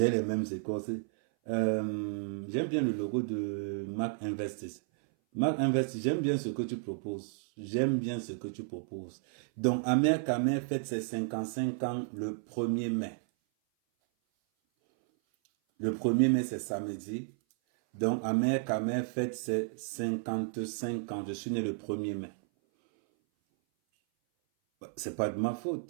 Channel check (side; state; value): left; silent; 56 dB below the other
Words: les mêmes écorces. J'aime bien le logo de Mark Investis. Mark Investis, j'aime bien ce que tu proposes. Donc, Amer Kamer fête ses 55 ans le 1er mai. Le 1er mai, c'est samedi. Donc, Amer Kamer fête ses 55 ans. Je suis né le 1er mai. C'est pas de ma